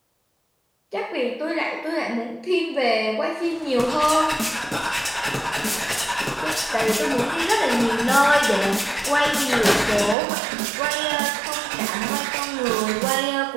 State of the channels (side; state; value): left; drops out; at 10.2 s